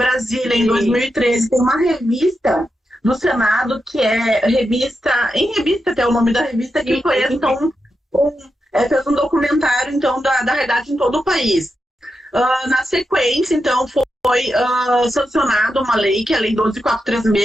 em 2013, tem uma revista do Senado, que é revista até o nome da revista, que foi, então, fez um documentário, então, da realidade em todo o país. Na sequência, então, foi sancionada uma lei, que é a Lei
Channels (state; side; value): normal; both; correlation 0.87